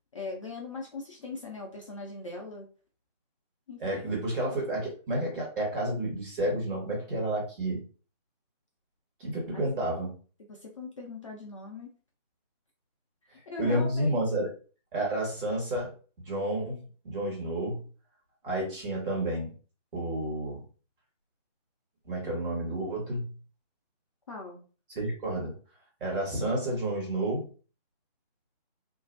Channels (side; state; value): both; inverted; correlation -0.32